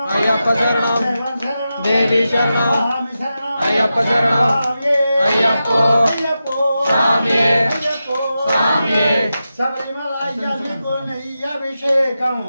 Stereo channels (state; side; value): inverted; both; correlation -0.91